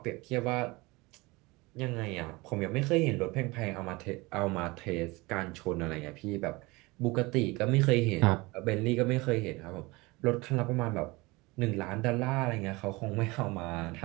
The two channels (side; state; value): left; quieter; 23.5 dB